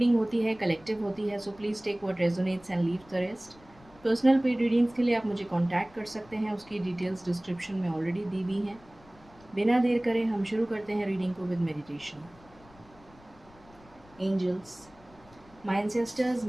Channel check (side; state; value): left; noise; rumble, 25 dB below the sound